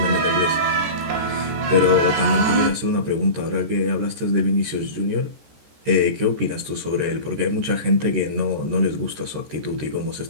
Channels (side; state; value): left; late; 14 ms